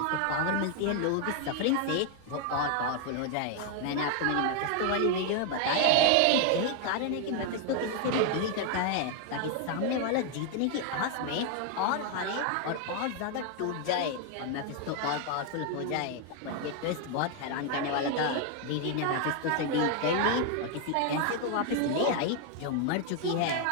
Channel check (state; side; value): different; both; correlation 0.01